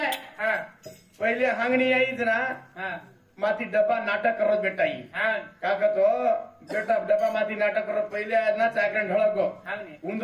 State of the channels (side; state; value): both; identical; correlation 1.00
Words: हाँ पहले हांगनी आई जना हाँ माथी डब्बा नाटक करो बेटा ही हाँ काका तो बेटा डब्बा माथी नाटक करो पहले आज ना चाकरण ढळक गो हाँ ने